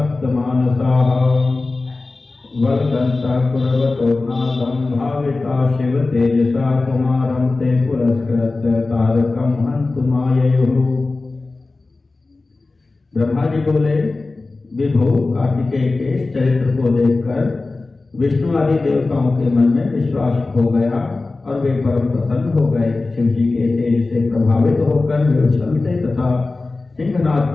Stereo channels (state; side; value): quieter; right; 3.5 dB